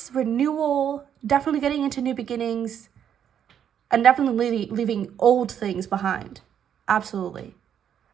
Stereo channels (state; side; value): quieter; left; 9.0 dB